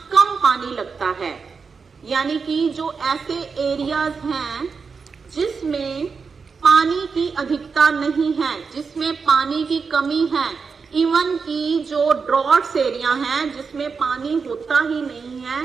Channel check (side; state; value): left; quieter; 5.2 dB